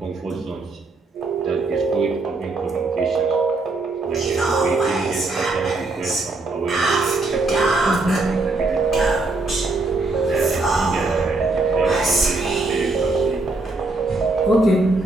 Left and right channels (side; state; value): left; quieter; 3.3 dB